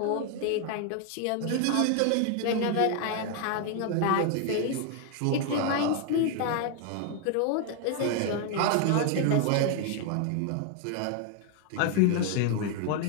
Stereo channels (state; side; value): different; both; correlation 0.00